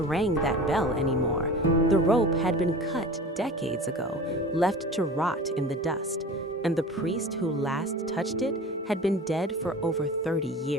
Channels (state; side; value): normal; both; correlation 0.37